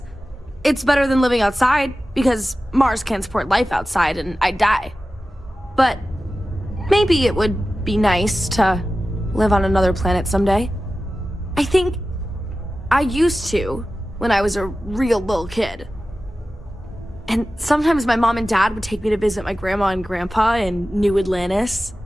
It's better than living outside, because Mars can't support life outside and I'd die. But maybe it would be nice to live on another planet someday. I think I used to when I was a real little kid. And sometimes my mom and dad would take me to visit my grandma and grandpa in New Atlantis.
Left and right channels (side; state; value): both; normal; correlation 0.95